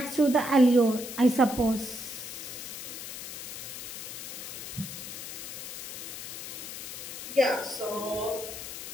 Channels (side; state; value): left; noise; hiss, 8 dB below the sound